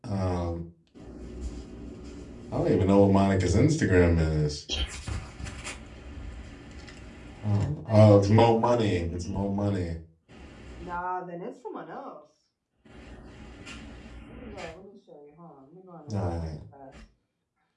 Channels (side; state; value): both; identical; correlation 1.00